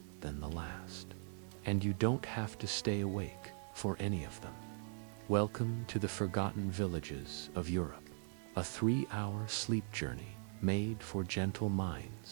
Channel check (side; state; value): left; silent; 51 dB below the other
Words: than the last. And you don't have to stay awake for any of them. Welcome to the Forgotten Villages of Europe, a 3-hour sleep journey made for gentle